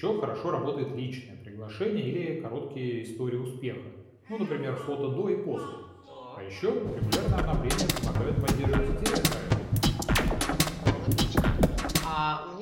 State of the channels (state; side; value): identical; both; correlation 1.00